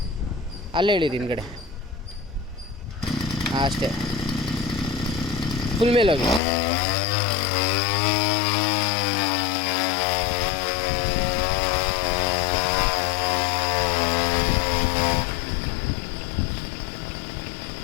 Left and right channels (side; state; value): right; drops out; at 6.4 s